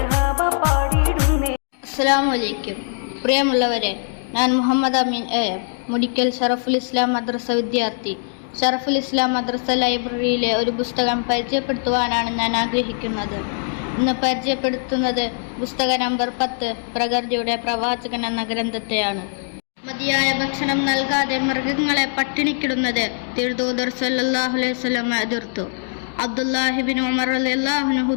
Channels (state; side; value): silent; right; digital silence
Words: അസ്സലാമു അലൈക്കും. പ്രിയമുള്ളവരെ, ഞാൻ മുഹമ്മദ് അമീൻ മുടിക്കൽ ഷറഫുൽ ഇസ്ലാം മദ്രസ വിദ്യാർത്ഥി. ഷറഫുൽ ഇസ്ലാം മദ്രസ ലൈബ്രറിയിലെ ഒരു പുസ്തകം പരിചയപ്പെടുത്തുവാനാണ് ഞാൻ ആഗ്രഹിക്കുന്നത്. ഇന്ന് പരിചയപ്പെടുത്തുന്നത് പുസ്തക നമ്പർ 10 പ്രകൃതിയുടെ പ്രവാചകൻ എന്ന ഗ്രന്ഥത്തെയാണ്. മതിയായ ഭക്ഷണം നൽകാതെ മൃഗങ്ങളെ പട്ടിണിക്കിടുന്നത് തിരുദൂതർ സല്ലല്ലാഹു അലൈഹി വസല്ലം എതിർത്തു. അബ്ദുല്ലാഹിബിൻ ഉമർ റളിയല്ലാഹു അൻഹു